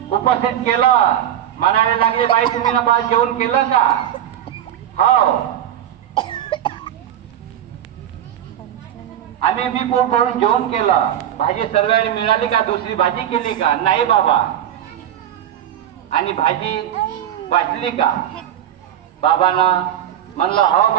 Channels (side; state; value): left; quieter; 10.7 dB